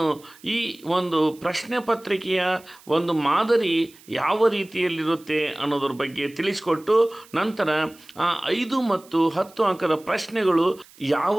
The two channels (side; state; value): right; noise; hiss, 25 dB below the sound